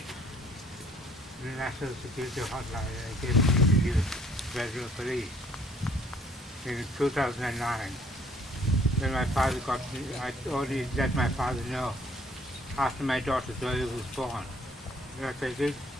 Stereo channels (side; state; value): both; normal; correlation 0.60